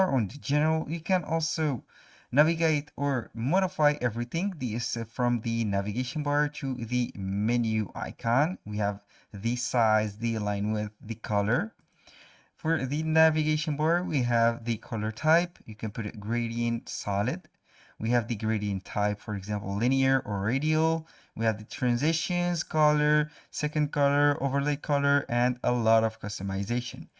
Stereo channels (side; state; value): both; identical; correlation 1.00